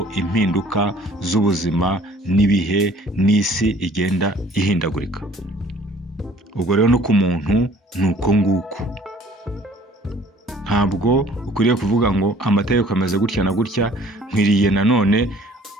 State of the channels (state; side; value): normal; both; correlation 0.54